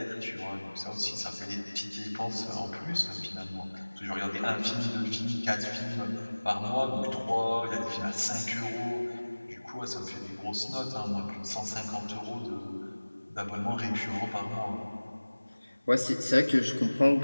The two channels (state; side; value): inverted; both; correlation -1.00